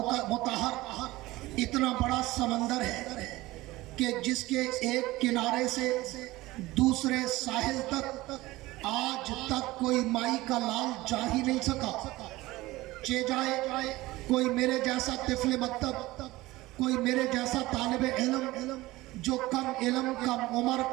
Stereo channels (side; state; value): left; quieter; 18.8 dB